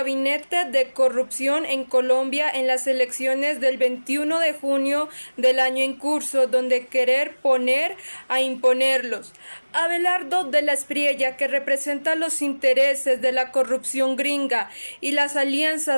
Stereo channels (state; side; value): inverted; both; correlation -1.00